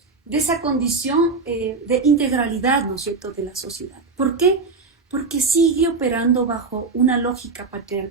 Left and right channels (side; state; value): left; quieter; 4.2 dB